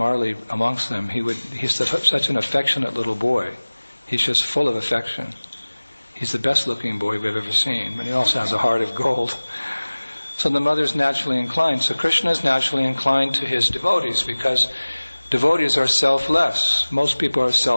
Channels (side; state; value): both; inverted; correlation -1.00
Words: amongst them, he's such an affectionate little boy. He's just full of affection. He's the best looking boy we've ever seen, but he also has a heart of gold. So the mother's naturally inclined. So Krishna is naturally inclined to his devotees because devotees are selfless. Most people are